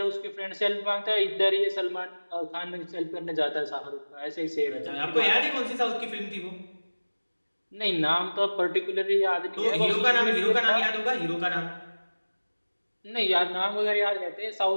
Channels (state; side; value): inverted; both; correlation -1.00